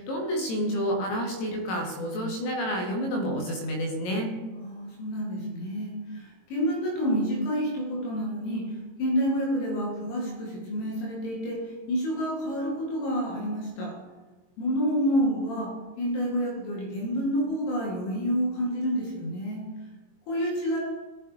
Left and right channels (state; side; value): late; right; 22 ms